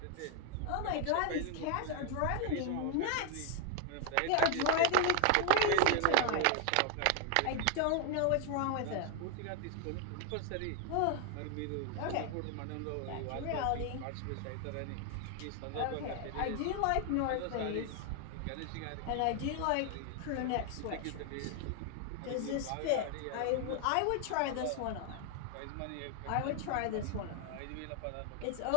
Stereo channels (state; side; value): different; both; correlation 0.00